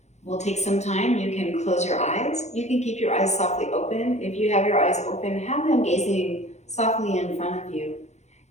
We'll take some time. You can close your eyes. You can keep your eyes softly open. If you have your eyes open, have them gazing softly in front of you.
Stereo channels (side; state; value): right; late; 0.33 ms